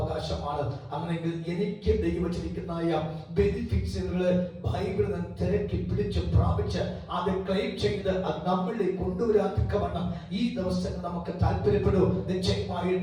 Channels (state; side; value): identical; both; correlation 1.00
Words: അങ്ങനെയെങ്കിൽ എനിക്ക് ദൈവം വെച്ചിരിക്കുന്ന ബെനിഫിറ്റ്സുകള് ബൈബിളിൽ നിന്ന് തിരക്കി പിടിച്ച് പ്രാപിച്ച് അത് ക്ലെയിം ചെയ്ത് അത് നമ്മളിലേക്ക് കൊണ്ടുവരാൻ തക്കവണ്ണം ഈ ദിവസങ്ങൾ നമുക്ക് താല്പര്യപ്പെടൂ.